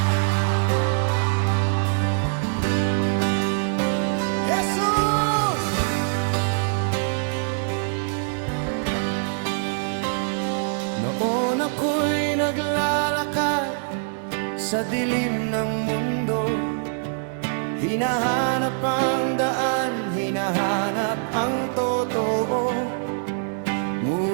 Jesus! Noon ako'y naglalakad sa dilim ng mundo, hinahanap ang daan, hinahanap ang totoo.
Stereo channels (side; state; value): left; silent; digital silence